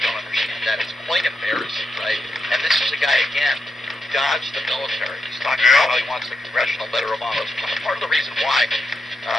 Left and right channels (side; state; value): both; normal; correlation 0.84